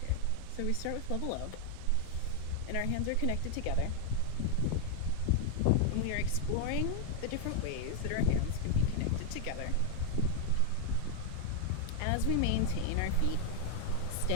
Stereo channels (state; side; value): different; both; correlation 0.00